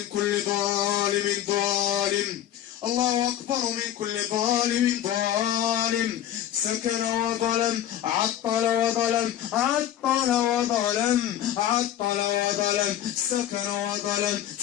كل ظالم ظالم الله أكبر من كل ظالم ظالم سكن وظلم عطل وظلم عطل وظلم عطل وظلم سكن وظلم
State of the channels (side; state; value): right; quieter; 11.5 dB